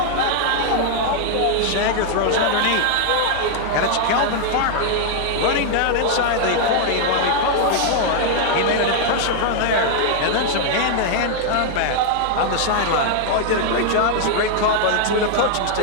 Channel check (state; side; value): different; both; correlation -0.01